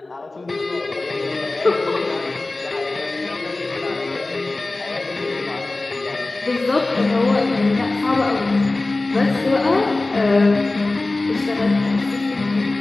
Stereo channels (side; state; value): right; quieter; 3.1 dB